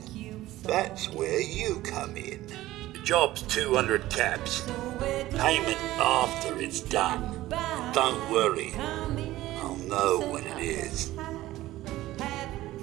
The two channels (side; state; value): left; quieter; 16.1 dB